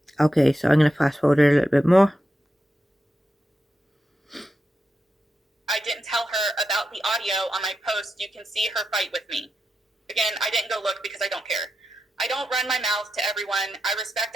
Okay, so I'm going to fast forward a little bit more. I didn't tell her about the audio on my post. You can see her fight with me. Again, I didn't go look because I don't care. I don't run my mouth to everyone. I respect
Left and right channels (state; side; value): normal; both; correlation 0.88